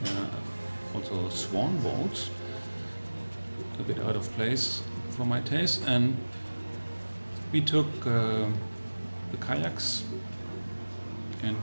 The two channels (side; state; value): both; inverted; correlation -1.00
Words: also swan boats, a bit out of place for my taste. And we took the kayaks and